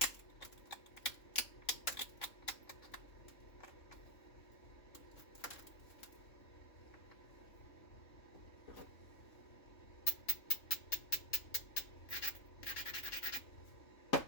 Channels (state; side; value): late; right; 3.6 ms